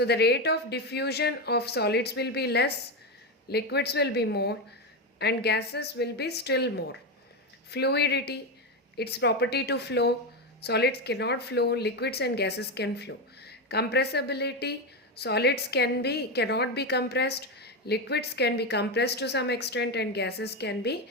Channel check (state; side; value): normal; both; correlation 0.12